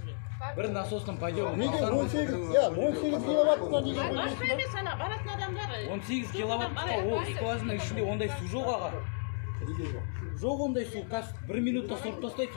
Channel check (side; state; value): right; silent; digital silence